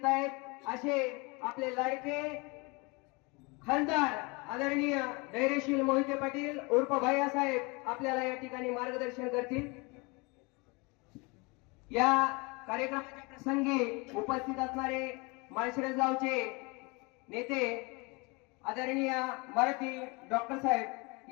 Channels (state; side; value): quieter; right; 28.0 dB